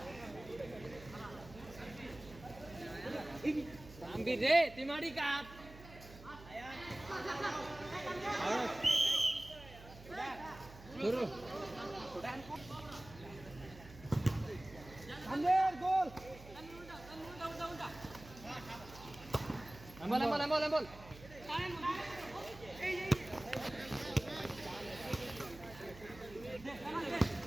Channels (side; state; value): right; noise; hum, 17 dB below the sound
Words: Ambee রে তিমাড়ি কাট ধরো আন্দের গোল এম্বল